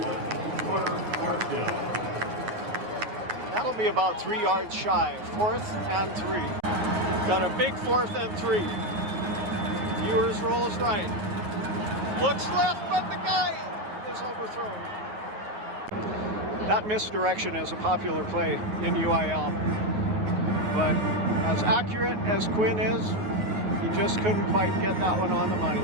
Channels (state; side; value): late; left; 9.5 ms